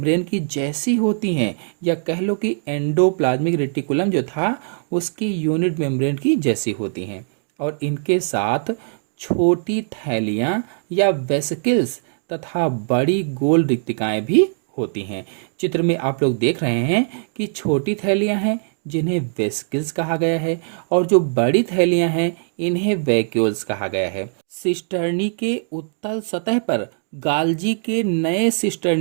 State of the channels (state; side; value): silent; left; digital silence